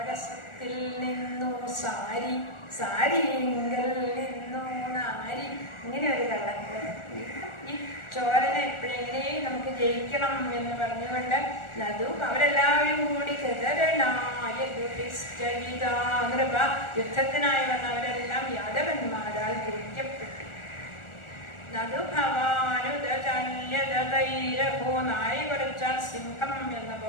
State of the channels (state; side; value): late; right; 1.4 ms